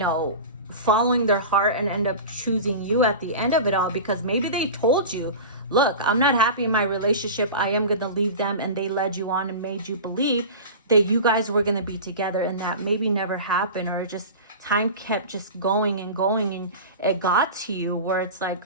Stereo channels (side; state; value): both; inverted; correlation -0.32